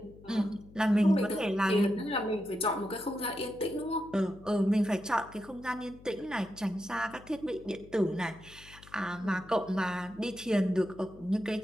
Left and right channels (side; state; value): left; noise; hum, 21 dB below the sound